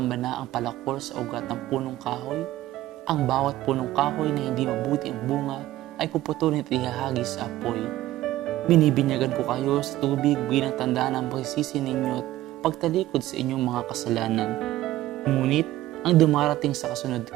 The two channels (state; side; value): quieter; left; 15.4 dB